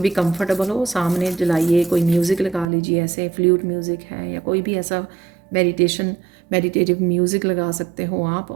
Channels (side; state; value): left; drops out; at 2.7 s